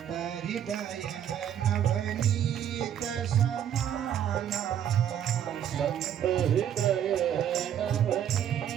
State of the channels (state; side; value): quieter; left; 9.8 dB